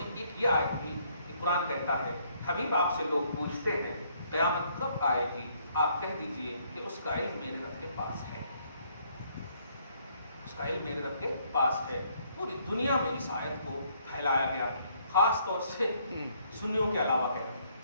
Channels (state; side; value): inverted; both; correlation -0.67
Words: ایک یہ آیت بھی کہ قرآن کہتا ہے حبیب آپ سے لوگ پوچھتے ہیں قیامت کب آئے گی، آپ کہہ دیجئے کہ اس کا علم میرے رب کے پاس ہے، اس کا علم میرے رب کے پاس ہے۔ پوری دنیا میں اس آیت کو پھیلایا گیا، خاص طور سے سنیوں کے علاوہ کہہ رہے